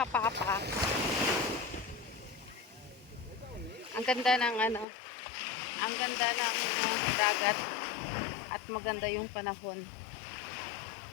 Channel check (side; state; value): right; drops out; at 4.9 s